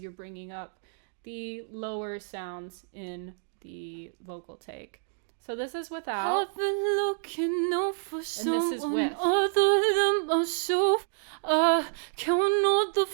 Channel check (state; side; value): silent; left; digital silence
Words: bringing up the lower sounds in the vocal take. So this is without, I've been looking out for and this is with. Other than myself, I count all the